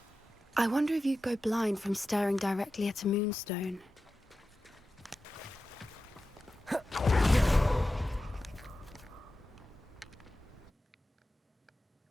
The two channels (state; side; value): normal; both; correlation 0.93